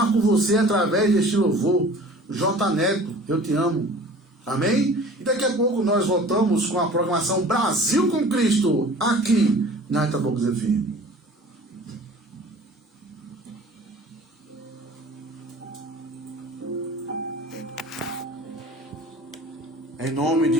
com você através deste louvor. J. Neto, eu te amo. Amém? E daqui a pouco nós voltamos com a programação Brasil com Cristo, aqui na Itabocas FM. Em nome de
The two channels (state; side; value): normal; both; correlation 0.45